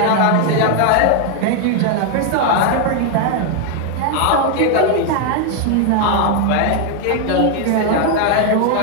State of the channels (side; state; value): both; different; correlation 0.00